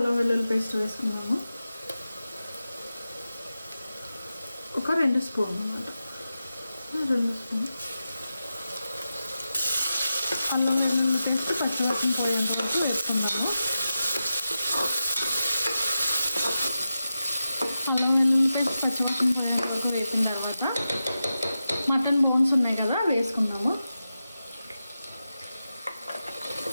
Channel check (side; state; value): both; inverted; correlation -0.91